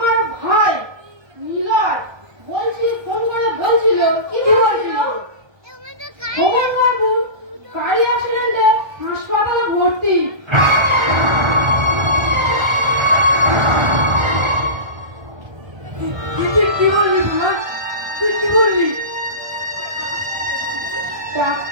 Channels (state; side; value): late; left; 1.3 ms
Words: ভাই নীলয় ফোন করে বলছিল কি বলছিল, ভগবান বাবু গাড়ি অ্যাক্সিডেন্টে হাসপাতালে ভর্তি। তুই কি বললি বুড়া? তুই কি বললি?